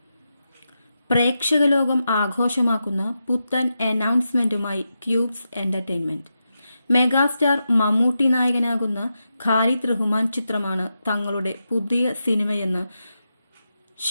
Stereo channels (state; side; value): inverted; both; correlation -0.88